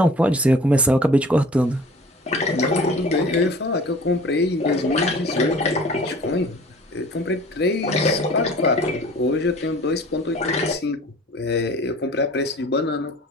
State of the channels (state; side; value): normal; both; correlation 0.46